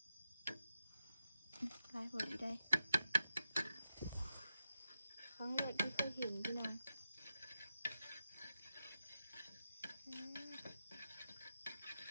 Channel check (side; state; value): both; inverted; correlation -0.88